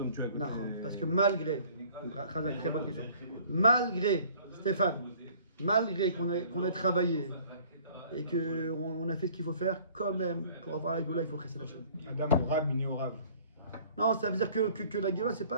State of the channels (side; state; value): both; inverted; correlation -0.54